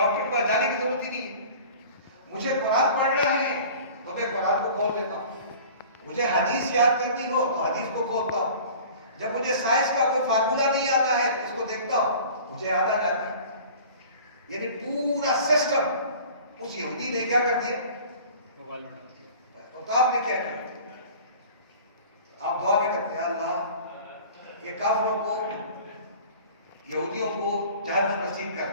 کے پاس جانے کی ضرورت ہی نہیں ہے، مجھے قرآن پڑھنا ہے تو میں قرآن کو کھول لیتا ہوں، مجھے حدیث یاد کرنی ہو تو حدیث کو کھولتا ہوں، جب مجھے سائنس کا کوئی فارمولا نہیں آتا ہے اس کو دیکھتا ہوں مجھے آتا جاتا ہے، یعنی پورا سسٹم اس یہودی نے کیا کر دیا، اور آپ نے کیا کیا؟ آپ دعا میں کرتے ہیں اللہ یہ کافروں کو یہودیوں کو جہنم نصیب کر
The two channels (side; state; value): both; inverted; correlation -0.43